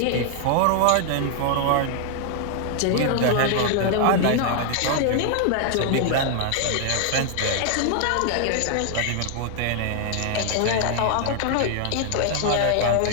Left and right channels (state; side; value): different; both; correlation 0.00